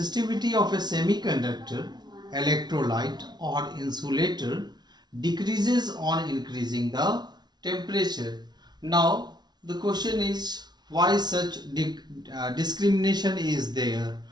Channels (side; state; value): left; late; 0.20 ms